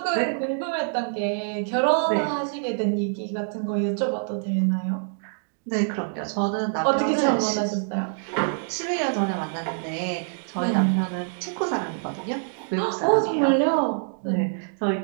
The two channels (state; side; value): silent; left; digital silence